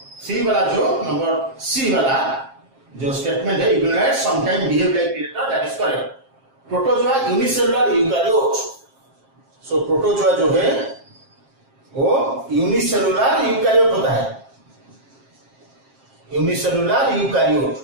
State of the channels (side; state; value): left; late; 7.5 ms